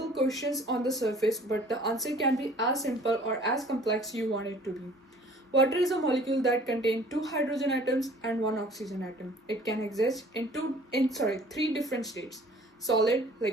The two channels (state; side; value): normal; both; correlation 0.52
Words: questions on the surface, but the answer can be as simple or as complex you want it to be. Water is a molecule that contains two hydrogen atoms and one oxygen atom. It can exist in three different states: solid,